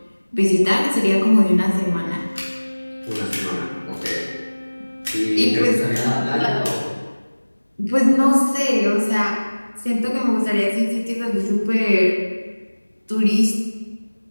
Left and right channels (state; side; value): inverted; both; correlation -1.00